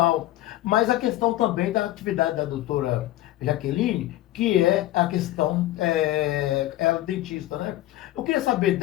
mas a questão também da atividade da doutora Jaqueline, que é a questão, ela é dentista, né? Eu queria saber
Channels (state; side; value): quieter; right; 15.7 dB